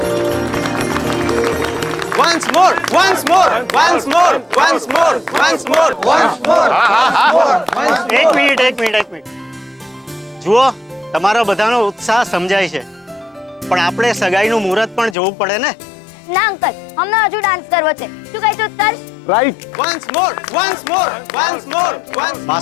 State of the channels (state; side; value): drops out; right; at 15.2 s